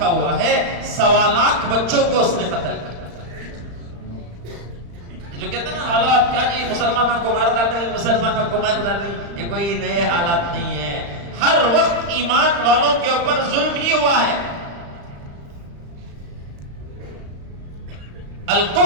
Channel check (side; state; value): left; late; 35 ms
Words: ہوا ہے 1.25 لاکھ بچوں کو اس نے قتل کیا. جو کہتے ہیں نا حالات کیا جی مسلمانوں کو مار ڈالیں، مسلمانوں کو مار ڈالیں، یہ کوئی نئے حالات نہیں ہے. ہر وقت ایمان والوں کے اوپر ظلم ہی ہوا ہے.